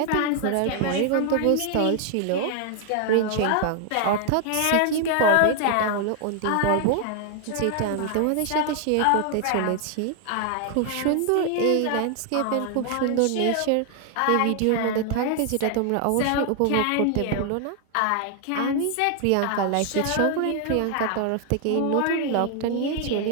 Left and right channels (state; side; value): different; both; correlation 0.00